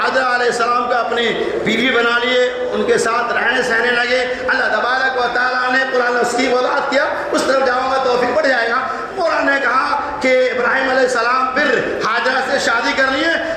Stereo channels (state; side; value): identical; both; correlation 1.00